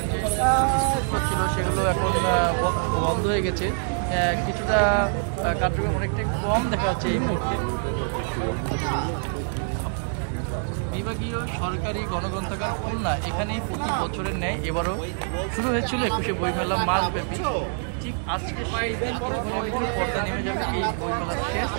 সেগুলো এখন বন্ধ হয়ে গেছে, কিছুটা কার্যক্রম অনেকটাই কম দেখা যাচ্ছে এই মুহূর্তে। বিভাগীয় সরকারি গণগ্রন্থাগার খুলনা এখানে প্রতি বছরের ন্যায় এবারও শুরু হয়েছিল 21শে বইমেলা মাসব্যাপী। ঠিক আজকে সেই দিন কিছুক্ষণ পর্দা নেমে যাবে এই বইমেলা শেষ।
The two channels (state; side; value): silent; left; 59 dB below the other